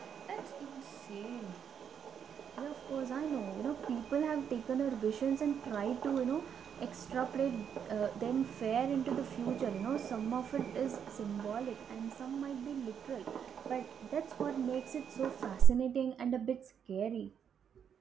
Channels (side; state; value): left; quieter; 7.9 dB